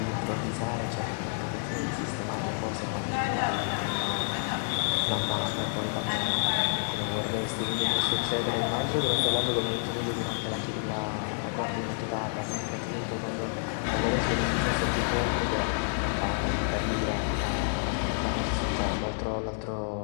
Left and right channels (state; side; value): silent; right; digital silence